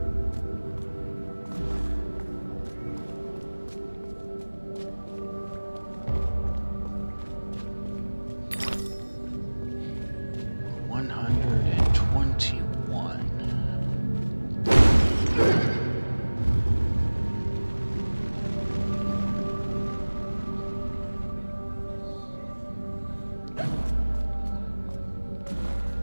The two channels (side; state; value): both; inverted; correlation -1.00